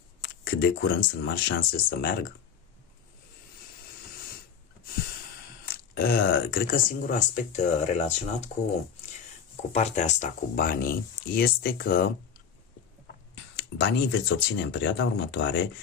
Cât de curând sunt mari șanse să meargă. Cred că singurul aspect relaționat cu partea asta, cu banii, este că banii veți obține în perioada următoare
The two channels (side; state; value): right; quieter; 7.2 dB